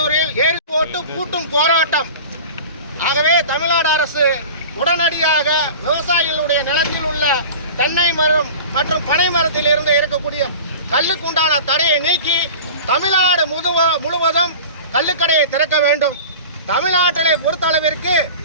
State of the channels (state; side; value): inverted; both; correlation -0.37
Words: ஏரி போட்டு பூட்டும் போராட்டம். ஆகவே தமிழ்நாடு அரசு உடனடியாக விவசாயிகளுடைய நிலத்தில் உள்ள தென்னை மரம் மற்றும் பனை மரத்தில் இருந்து இருக்கக்கூடிய கல்லுக்குண்டான தடையை நீக்கி தமிழ்நாடு முழுவதும் கள்ளுக்கடையை திறக்க வேண்டும். தமிழ்நாட்டிலே பொறுத்தளவிற்கு